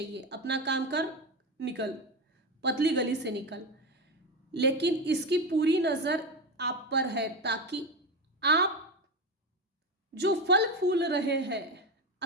अपना काम कर, निकल, पतली गली से निकल। लेकिन इसकी पूरी नजर आप पर है, ताकि आप जो फल फूल रहे हैं,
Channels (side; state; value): both; normal; correlation 0.17